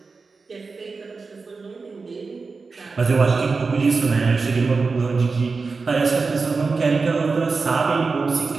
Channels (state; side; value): quieter; left; 4.4 dB